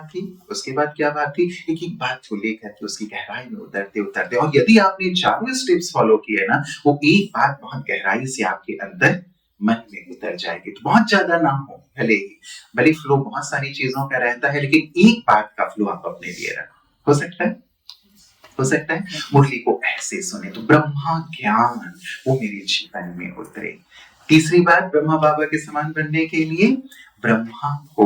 थी, उसके बाद क्या बात थी, एक एक बात को लेकर के उसकी गहराई में उतरते। और यदि आपने चारों स्टेप्स फॉलो किए ना, वो एक बात बहुत गहराई से आपके अंदर मन में उतर जाएगी। तो बहुत ज्यादा ना हो, भले फ्लो बहुत सारी चीजों का रहता है, लेकिन एक बात का फ्लो आप अपने लिए रखो। हो सकता है मुरली को ऐसे सुने तो ब्रह्मा ज्ञान वो मेरे जीवन में उतरे। तीसरी बात, ब्रह्मा बाबा के समान बनने के लिए ब्रह्मा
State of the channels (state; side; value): identical; both; correlation 1.00